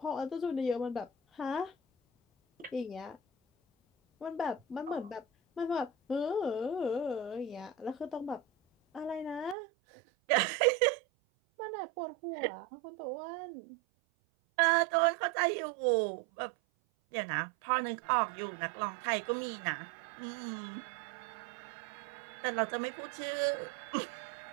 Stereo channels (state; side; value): drops out; left; at 9.6 s